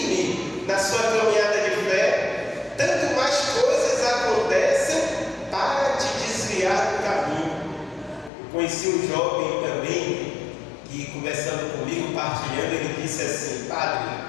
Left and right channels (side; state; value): right; drops out; at 8.3 s